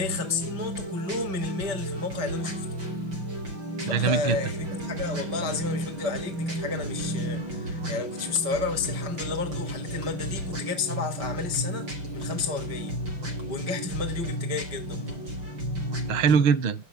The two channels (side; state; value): left; late; 5.2 ms